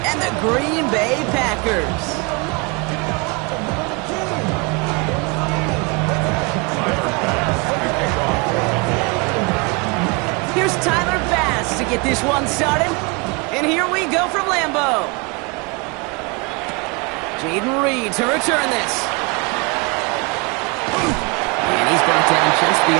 and the Green Bay Packers. Here's Tyler Bass to get this one started. And here we go from Lambeau. Jaden Reed to return this. And he's brought down just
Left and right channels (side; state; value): left; quieter; 29.4 dB